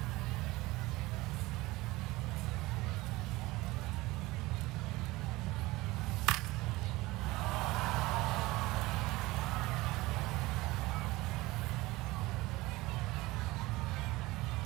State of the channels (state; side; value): quieter; left; 20.3 dB